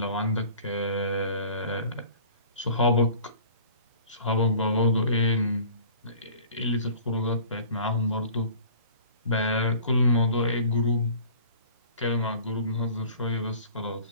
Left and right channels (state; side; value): inverted; both; correlation -0.46